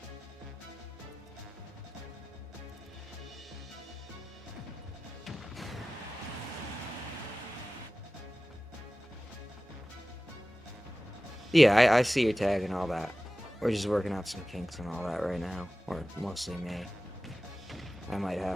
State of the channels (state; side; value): normal; both; correlation 0.95